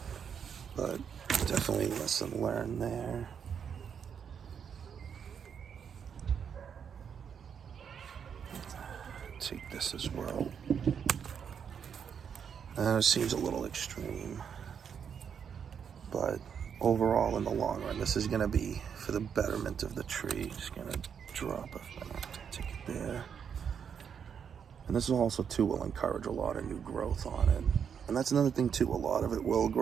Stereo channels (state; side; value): quieter; left; 7.4 dB